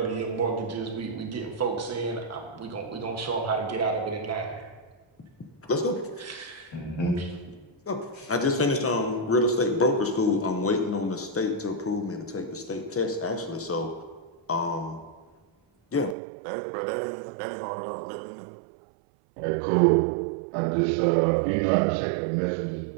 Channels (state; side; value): drops out; left; at 16.2 s